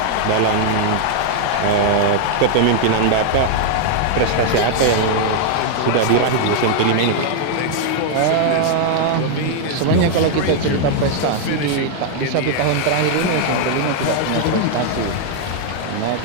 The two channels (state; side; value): different; both; correlation 0.00